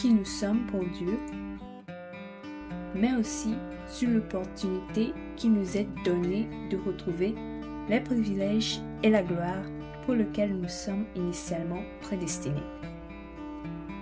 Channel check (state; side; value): identical; both; correlation 1.00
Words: nous sommes pour Dieu, mais aussi sur l'opportunité qui nous est donnée de retrouver les privilèges et la gloire pour lesquels nous sommes initialement prédestinés.